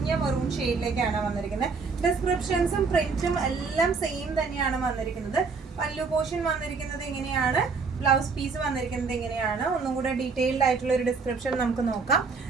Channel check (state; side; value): quieter; left; 4.8 dB